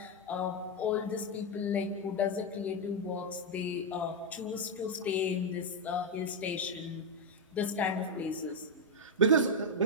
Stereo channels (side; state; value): both; normal; correlation 0.02